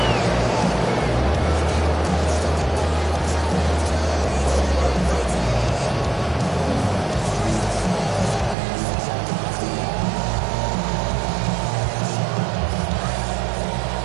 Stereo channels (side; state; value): left; drops out; at 8.6 s